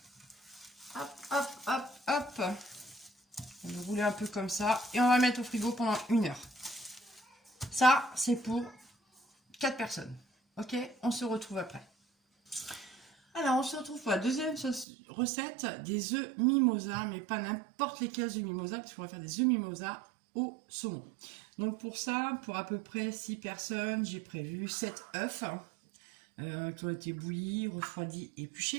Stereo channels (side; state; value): left; drops out; at 14.9 s